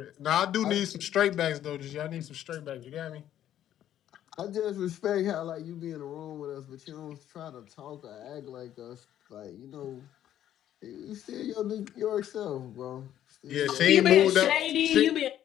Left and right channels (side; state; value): right; quieter; 11.4 dB